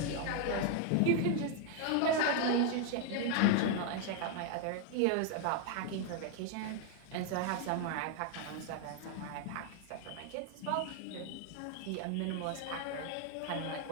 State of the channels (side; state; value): both; different; correlation 0.00